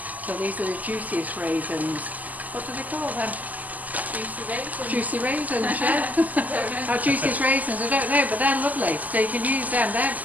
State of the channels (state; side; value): late; left; 0.079 ms